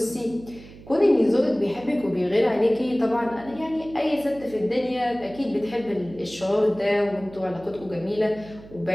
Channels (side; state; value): right; noise; hum, 19 dB below the sound